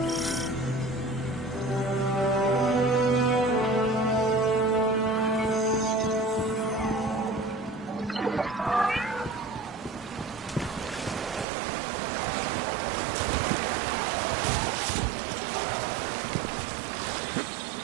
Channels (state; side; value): drops out; left; at 11.5 s